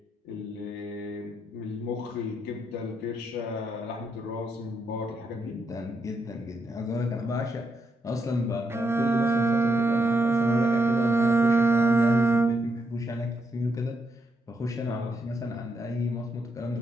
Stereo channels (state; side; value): normal; both; correlation 0.80